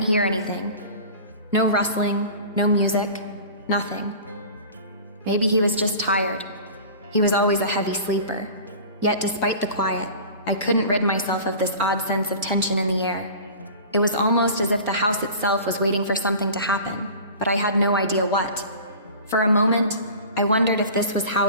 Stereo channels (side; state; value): both; inverted; correlation -0.39